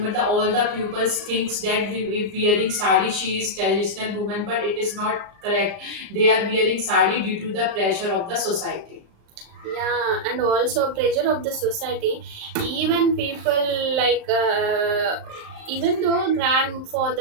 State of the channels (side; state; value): left; late; 35 ms